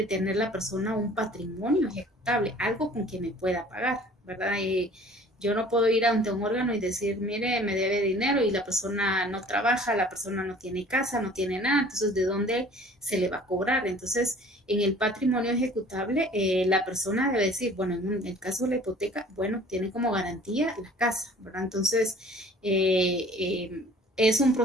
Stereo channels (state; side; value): normal; both; correlation 0.50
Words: tener la persona un patrimonio ejecutable, algo con que me pueda pagar, ¿verdad? Yo no puedo ir ante un órgano y decir, mire, me debe dinero y la persona no trabaja, la persona no tiene casa, no tiene nada, entonces ¿de dónde se le va a cobrar? Entonces, en el patrimonio ejecutable, la persona debe decir, bueno, en el caso de la hipoteca, bueno, tiene como garantía la casa, ¿verdad? Entonces, es un